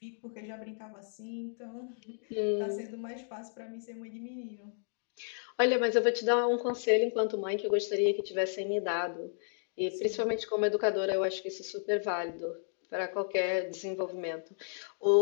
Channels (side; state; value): right; silent; digital silence